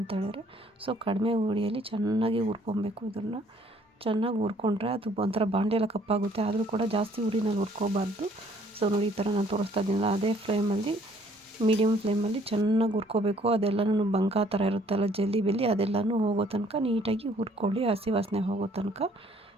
ಹೇಳಿದ್ರೆ. ಸೊ ಕಡಿಮೆ ಉರಿಯಲ್ಲಿ ಚೆನ್ನಾಗಿ ಹುರ್ಕೊಬೇಕು. ಇದನ್ನು ಚೆನ್ನಾಗಿ ಹುರ್ಕೊಂಡ್ರೆ ಅದು ಒಂಥರ ಬಾಂಡೆಲ್ಲ ಕಪ್ಪಾಗುತ್ತೆ. ಆದರೂ ಕೂಡ ಜಾಸ್ತಿ ಉರಿನಲ್ಲಿ ಹುರ್ಕೋಬಾರ್ದು. ಸೊ ನೋಡಿ, ಈ ಥರ ನಾನು ತೋರಿಸ್ತಾ ಇದ್ದೀನಲ್ಲ, ಅದೇ ಫ್ಲೇಮಲ್ಲಿ, ಮೀಡಿಯಮ್ ಫ್ಲೇಮಲ್ಲಿ ಚೆನ್ನಾಗಿ ಹುರ್ಕೋಬೇಕು. ಅದೆಲ್ಲನೂ ಬಂಕ ಥರ ಇರುತ್ತಲ್ಲ, ಜಲ್ಲಿ ಬೆಲ್ಲಿ, ಅದೆಲ್ಲನೂ ಹೋಗೋ ತನಕ ನೀಟಾಗಿ ಹುರ್ಕೊಳ್ಳಿ, ಹಸಿ ವಾಸನೆ ಹೋಗೋ ತನಕ.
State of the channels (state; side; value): normal; both; correlation 0.61